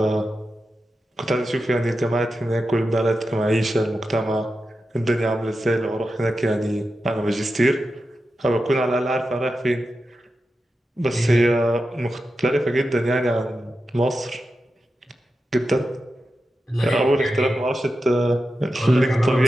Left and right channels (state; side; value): normal; both; correlation 0.90